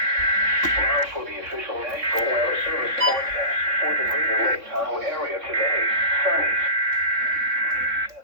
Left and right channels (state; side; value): late; left; 3.6 ms